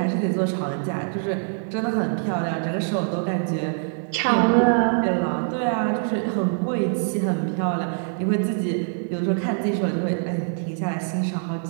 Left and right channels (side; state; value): left; silent; 59 dB below the other